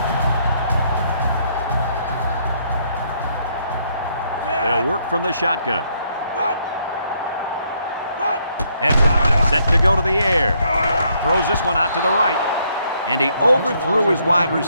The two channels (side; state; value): both; inverted; correlation -0.71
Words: They'll work from the shotgun. Edwards set to go to the air. Throws this one out to the right. And he overthrew his wide